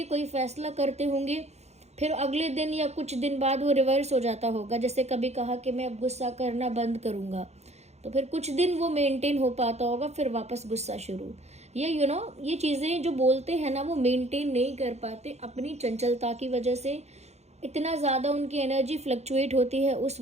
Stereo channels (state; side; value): late; left; 0.32 ms